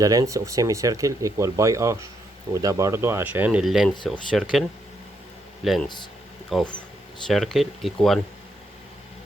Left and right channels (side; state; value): both; normal; correlation 0.77